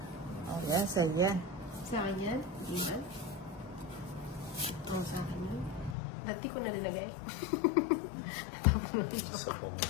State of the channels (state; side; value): drops out; right; at 6.0 s